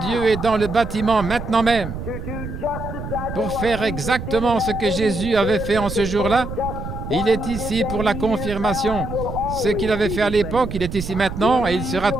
est dans le bâtiment maintenant même pour faire exactement ce que Jésus avait fait en ce jour-là. Il est ici pour la confirmation. Ce qu'il avait fait à l'époque, il est ici maintenant et il sera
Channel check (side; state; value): right; noise; rumble, 8 dB below the sound